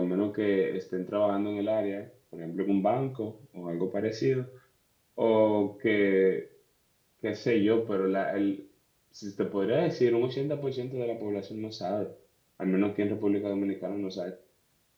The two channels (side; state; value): both; identical; correlation 1.00